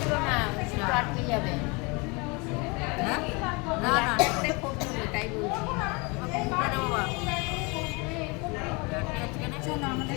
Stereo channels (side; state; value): right; quieter; 28.6 dB